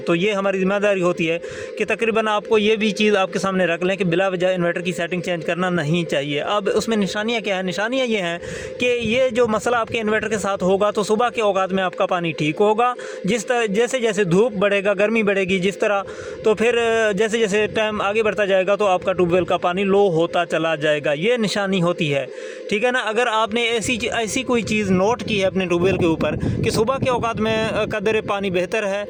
तो ये हमारी ज़िम्मेदारी होती है कि तकरीबन आपको ये भी चीज़ आपके सामने रख लें कि बिला वजह इन्वर्टर की सेटिंग चेंज करना नहीं चाहिए। अब उसमें निशानियाँ क्या है? निशानियाँ ये हैं कि ये जो मसला आपके इन्वर्टर के साथ होगा तो सुबह के औकात में आपका पानी ठीक होगा। जिस तरह जैसे जैसे धूप बढ़ेगा, गर्मी बढ़ेगी जिस तरह, तो फिर जैसे जैसे टाइम आगे बढ़ता जाएगा तो आपका ट्यूबवेल का पानी लो होता चला जाएगा। ये निशानी होती है, ठीक है ना। अगर आपने ऐसी कोई चीज़ नोट की है अपने ट्यूबवेल के ऊपर कि सुबह के औकात में कदर पानी बेहतर है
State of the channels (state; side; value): identical; both; correlation 1.00